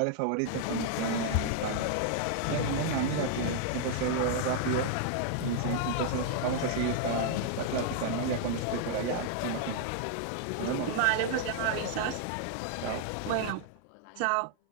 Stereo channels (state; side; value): different; both; correlation -0.01